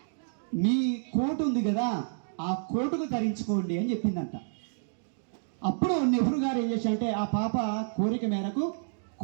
మీ కోటు ఉంది కదా, ఆ కోటుకు ధరించుకోండి అని చెప్పిందంట. అప్పుడు నెహ్రూ గారు ఏం చేశారంటే ఆ పాప కోరిక మేరకు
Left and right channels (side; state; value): left; silent; digital silence